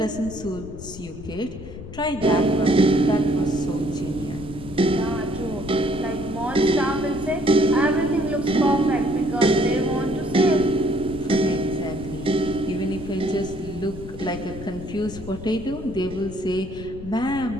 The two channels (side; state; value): left; noise; rumble, 13 dB below the sound